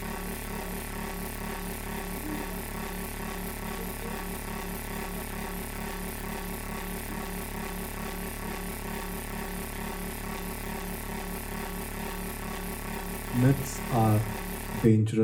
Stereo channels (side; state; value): both; identical; correlation 1.00